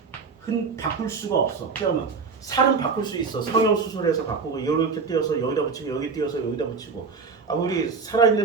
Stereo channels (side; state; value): left; quieter; 5.0 dB